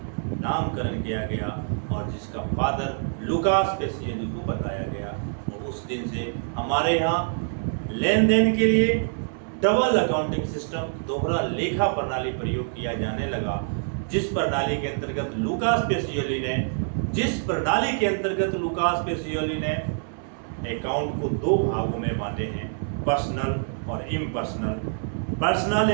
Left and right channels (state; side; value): silent; left; 61 dB below the other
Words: नामकरण किया गया और जिसका फादर लुकास पेसियली को बताया गया। और उस दिन से हमारे यहाँ लेन देन के लिए डबल अकाउंटिंग सिस्टम, दोहरा लेखा प्रणाली प्रयोग किया जाने लगा, जिस प्रणाली के अंतर्गत लुकास पेसियोली ने अकाउंट को दो भागों में बांटे हैं, पर्सनल और impersonal.